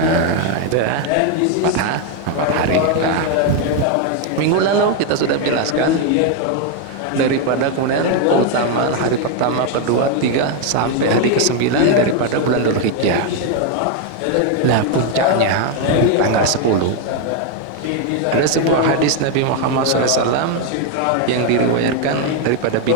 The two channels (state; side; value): different; both; correlation 0.01